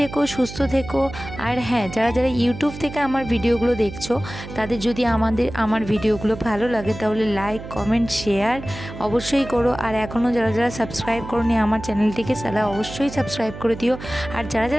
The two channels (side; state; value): right; noise; hum, 12 dB below the sound